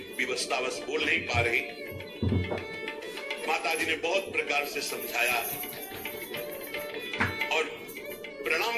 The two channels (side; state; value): both; identical; correlation 1.00